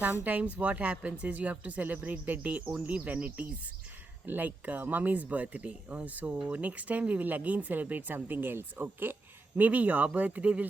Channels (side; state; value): left; quieter; 3.1 dB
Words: sometimes what happens is you have to celebrate the day only when it is like mummy's birthday. So next time we will again celebrate something else, okay? Maybe your birthday